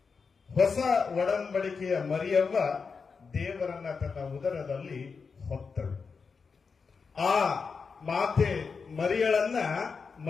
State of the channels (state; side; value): quieter; right; 5.2 dB